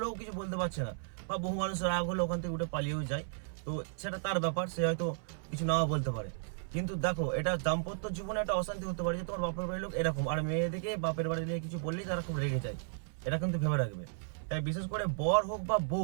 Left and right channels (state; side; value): silent; left; 55 dB below the other